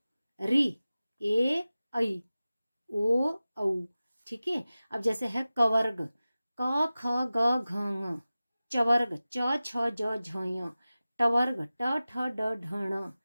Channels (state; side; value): inverted; both; correlation -0.96